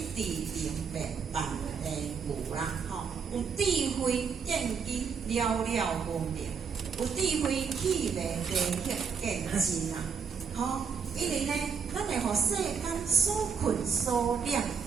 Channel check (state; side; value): quieter; left; 6.2 dB